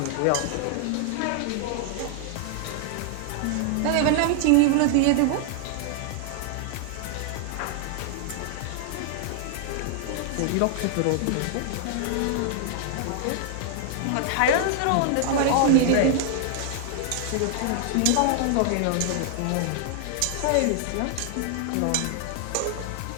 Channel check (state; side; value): different; both; correlation -0.01